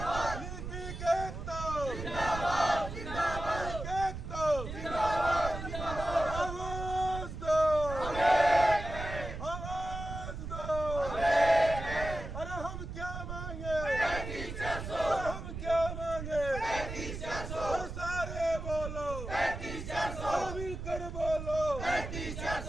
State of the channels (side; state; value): right; noise; rumble, 7 dB below the sound